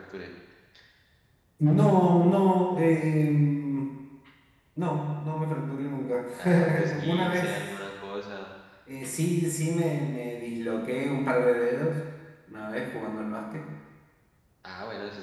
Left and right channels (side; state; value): both; identical; correlation 1.00